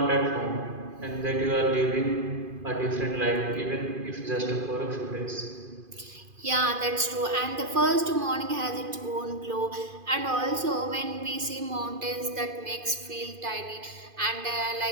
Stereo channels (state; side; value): late; left; 2.5 ms